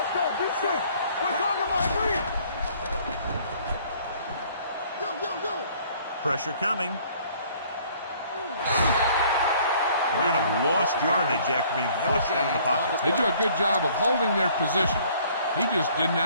go. Be safe. We're talking about green. Yo. Pressure coming. They might have lost yardage after being flushed out of the pocket. They do a good job of holding their position. He just didn't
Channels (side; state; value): both; inverted; correlation -0.57